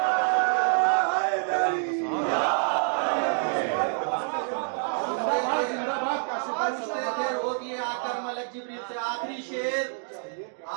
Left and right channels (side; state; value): left; silent; 60 dB below the other